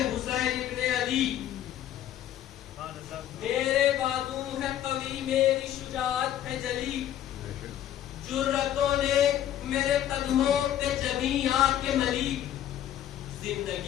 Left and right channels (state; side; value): quieter; right; 11.6 dB